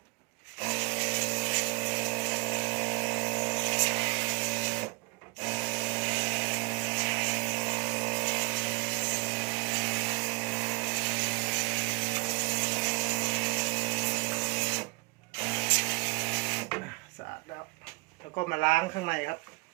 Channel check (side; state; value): left; quieter; 25.9 dB